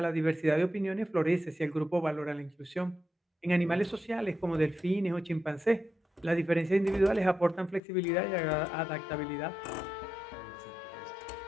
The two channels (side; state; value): right; drops out; at 7.8 s